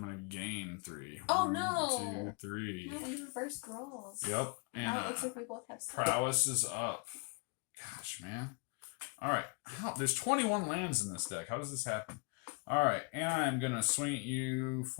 going to gain 3. Oh, 1, no. 2, 3. No, we reversed rolls. Yep. And Now it looks like we both have 6. prowess is up. Gosh, man. Alright. There's 21 lands in this deck. How does this happen? Alright, and I'm going to swing at you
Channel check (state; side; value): quieter; right; 33.4 dB